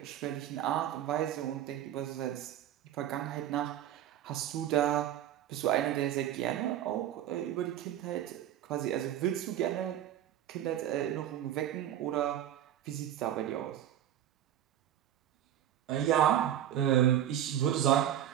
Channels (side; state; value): left; quieter; 11.4 dB